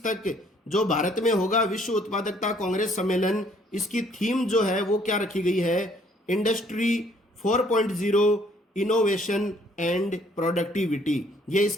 तक जो भारत में होगा विश्व उत्पादकता कांग्रेस सम्मेलन, इसकी थीम जो है वो क्या रखी गई है? इंडस्ट्री 4.0 इनोवेशन एंड प्रोडक्टिविटी, ये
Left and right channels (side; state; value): both; normal; correlation 0.62